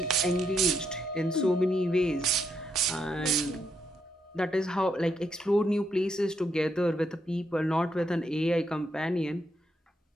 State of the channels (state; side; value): normal; both; correlation 0.78